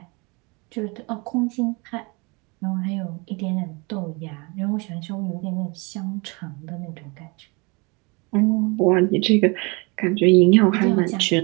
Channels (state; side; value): quieter; left; 28.5 dB